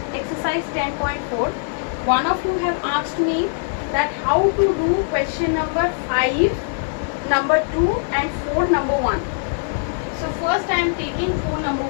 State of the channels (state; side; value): silent; right; digital silence